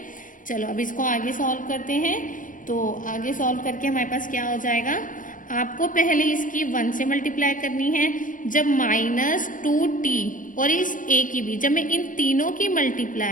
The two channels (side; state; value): right; late; 0.38 ms